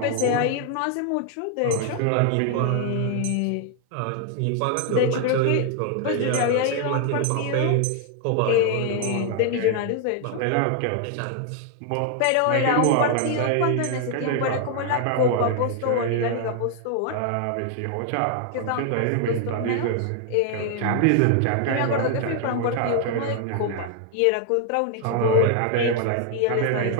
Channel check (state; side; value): different; both; correlation 0.00